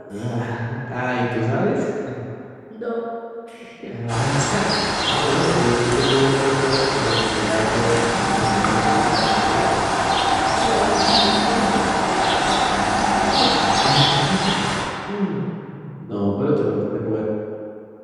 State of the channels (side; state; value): both; identical; correlation 1.00